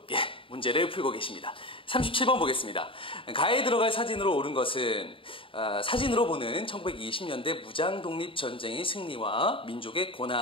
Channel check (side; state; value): right; late; 0.25 ms